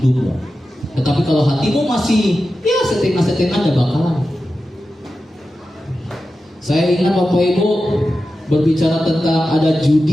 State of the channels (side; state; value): both; normal; correlation 0.92